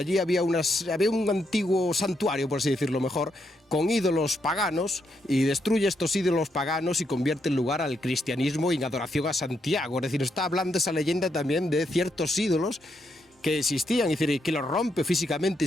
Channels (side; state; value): both; normal; correlation 0.79